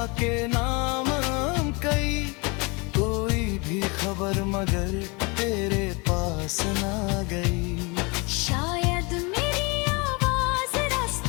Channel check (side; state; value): right; quieter; 28.8 dB